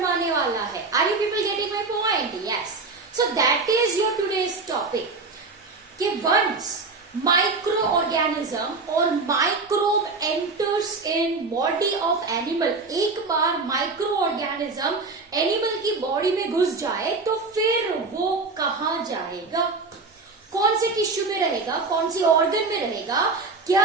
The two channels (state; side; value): quieter; left; 3.9 dB